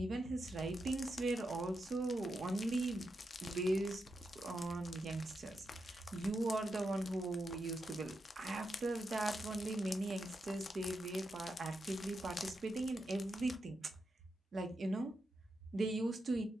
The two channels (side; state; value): both; normal; correlation 0.86